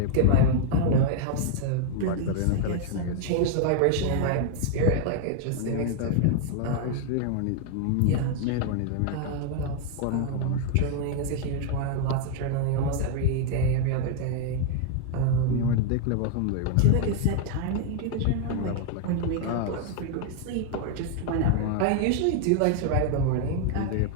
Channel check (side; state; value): both; different; correlation 0.00